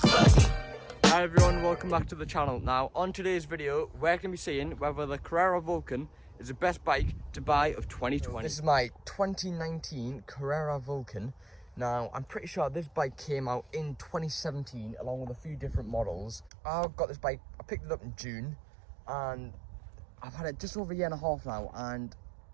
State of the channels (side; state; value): left; drops out; at 16.5 s